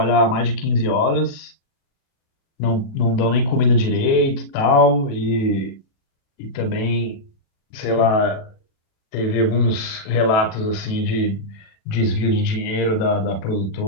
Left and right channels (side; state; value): right; late; 37 ms